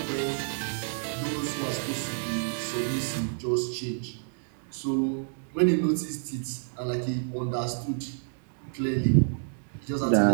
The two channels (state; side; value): silent; left; digital silence